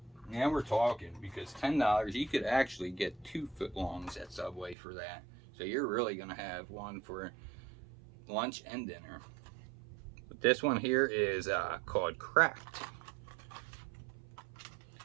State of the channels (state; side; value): drops out; left; at 4.8 s